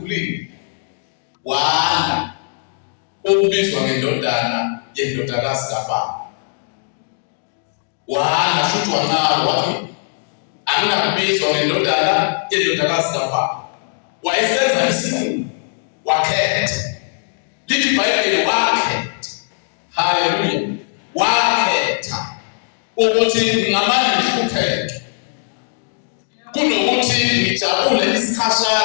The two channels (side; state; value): right; silent; digital silence